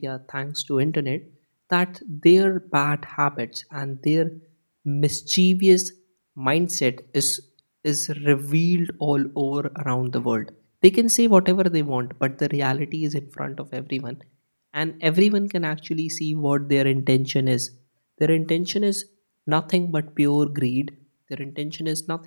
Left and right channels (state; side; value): inverted; both; correlation -1.00